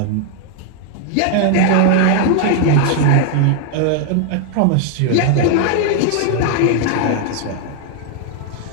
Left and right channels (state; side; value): different; both; correlation 0.00